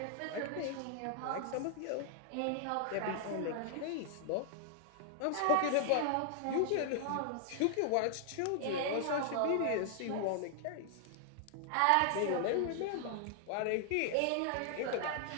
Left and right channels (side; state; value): both; different; correlation -0.01